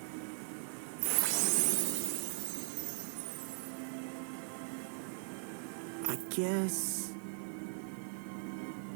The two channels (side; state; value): left; silent; 51 dB below the other